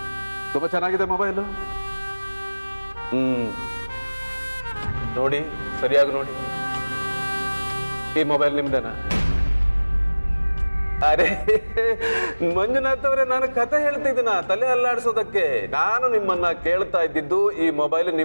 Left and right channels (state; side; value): inverted; both; correlation -1.00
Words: ತುಂಬಾ ಚೆನ್ನಾಗಿದೆ ಮೊಬೈಲು. ನೋಡಿ, ಸರಿಯಾಗಿ ನೋಡಿ. ಈ ಮೊಬೈಲ್ ನಿಮ್ದೇನಾ? ಅರೆ ಮಂಜುನಾಥ್ ಅವರೇ, ನಾನು ಕತೆ ಹೇಳ್ತಿದ್ದೀನ ತಲೆ ಅಲ್ಲಾಡಿಸೋದಕ್ಕೆ. ನಾನು ನಿಮ್ಮನ್ನ ಕೇಳ್ತಾ ಇದ್ದಿದ್ದು ಈ ಮೊಬೈಲ್